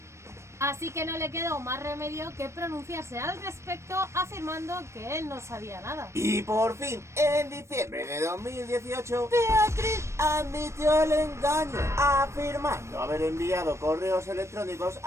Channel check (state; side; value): late; left; 0.13 ms